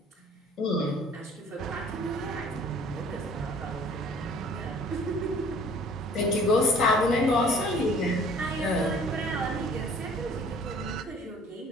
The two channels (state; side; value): normal; both; correlation 0.52